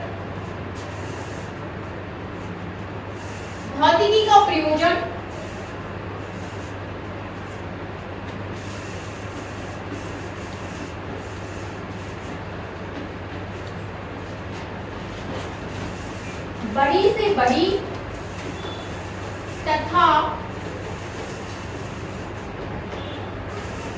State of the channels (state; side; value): identical; both; correlation 1.00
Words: भौतिकी का प्रयोजन बड़ी से बड़ी तथा